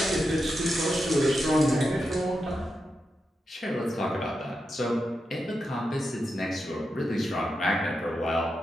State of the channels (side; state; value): both; normal; correlation 0.87